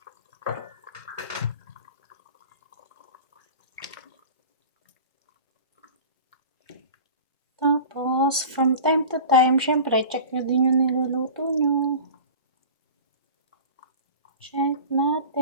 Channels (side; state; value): both; inverted; correlation -0.37